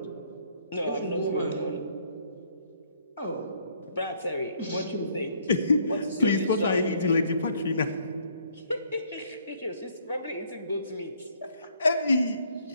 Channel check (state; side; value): inverted; both; correlation -0.65